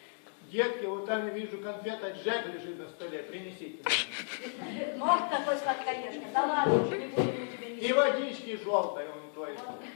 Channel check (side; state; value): right; silent; digital silence